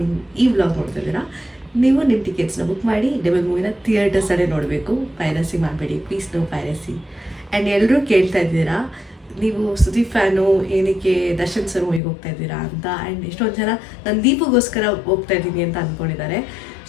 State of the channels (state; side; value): drops out; right; at 12.0 s